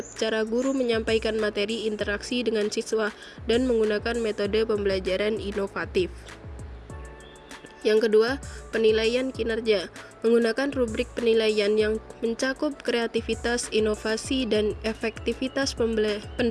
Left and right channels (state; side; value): identical; both; correlation 1.00